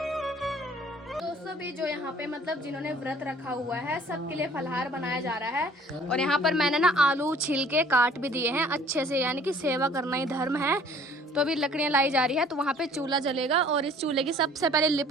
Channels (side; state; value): both; normal; correlation 0.54